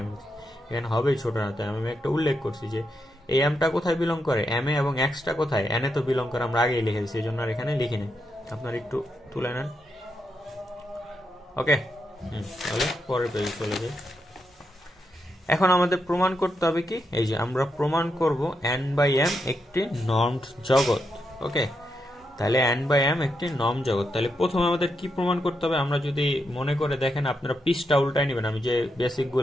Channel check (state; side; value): normal; both; correlation 0.83